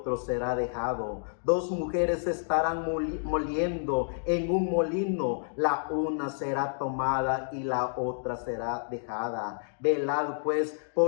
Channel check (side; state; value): right; silent; digital silence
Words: será dejado. Dos mujeres estarán moliendo en un molino, la una será tomada y la otra será dejada. Velad pues,